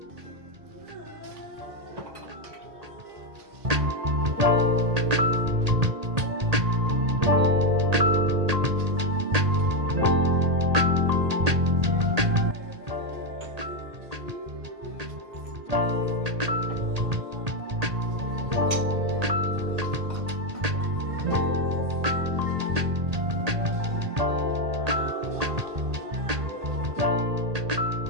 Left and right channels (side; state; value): left; late; 1.8 ms